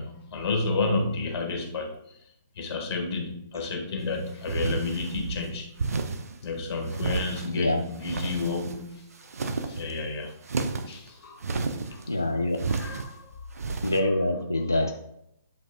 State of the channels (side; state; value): both; inverted; correlation -0.69